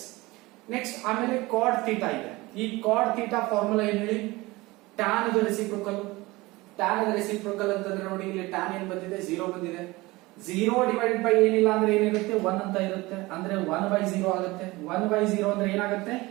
ನೆಕ್ಸ್ಟ್ ಆಮೇಲೆ ಕಾಡ್ ಥೀಟಾ ಇದೆ. ಈ ಕಾಡ್ ಥೀಟಾ ಫಾರ್ಮುಲಾ ಏನ್ ಹೇಳಿ? Tan the reciprocal. Tan the reciprocal ಅಂತಂದ್ರೆ ನೋಡಿ ಇಲ್ಲಿ ಟ್ಯಾನ್ ಏನ್ ಬಂದಿದೆ? 0 ಬಂದಿದೆ. 0 ಡಿವೈಡೆಡ್ ಬೈ ಏನಿಲ್ಲ ಅಂದ್ರೆ ಏನಿರುತ್ತೆ? 1 ಅಂತ ಇರುತ್ತೆ. ಅಂದ್ರೆ 1/0 ಆಗುತ್ತೆ. 1/0 ಅಂದ್ರೆ ಏನಾಗುತ್ತೆ?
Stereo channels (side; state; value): left; quieter; 21.3 dB